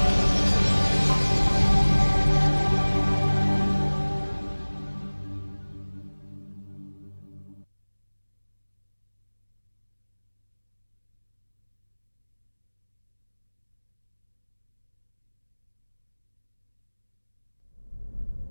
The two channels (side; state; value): both; inverted; correlation -1.00